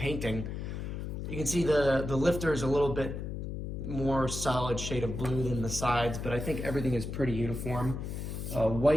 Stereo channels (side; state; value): left; noise; hum, 5 dB below the sound